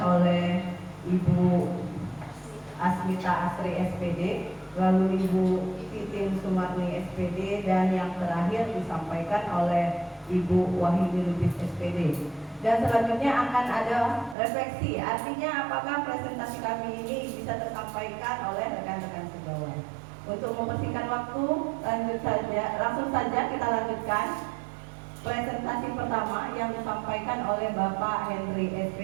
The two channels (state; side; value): drops out; left; at 14.4 s